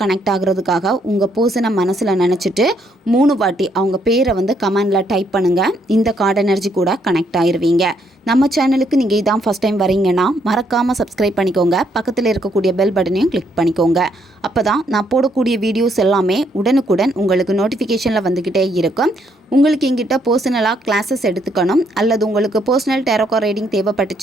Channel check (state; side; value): normal; both; correlation 0.72